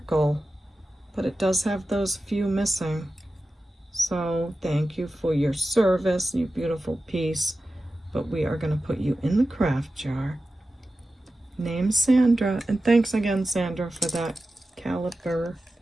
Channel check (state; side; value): normal; both; correlation 0.94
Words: But it does have those few missing. So thank you for your service, you beautiful piece. But we are going to put you in the craft jar. Name Sandra. And thanks again, Sandra, for that caliber.